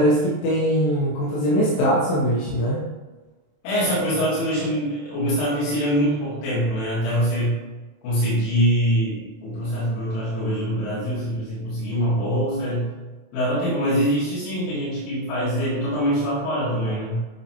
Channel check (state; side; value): late; right; 27 ms